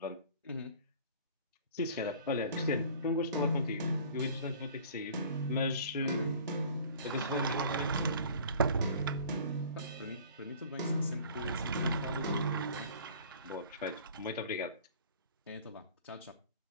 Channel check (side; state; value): both; inverted; correlation -0.47